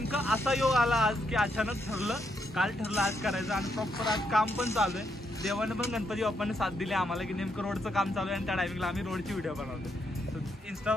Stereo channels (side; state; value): both; normal; correlation 0.78